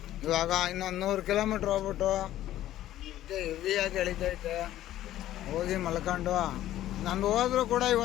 ಇವಾಗ ಇನ್ನೊಂದು 100 ಕಿಲೋಮೀಟ್ರ್ ಹೋಗ್ಬಿಟ್ಟು ಹೆವಿಯಾಗಿ ಎಳಿತೈತೆ. ಹೋಗಿ ಮಲ್ಕೊಂಡು ನಂದು ಹೋದ್ರೂ ಕೂಡ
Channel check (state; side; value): quieter; right; 13.4 dB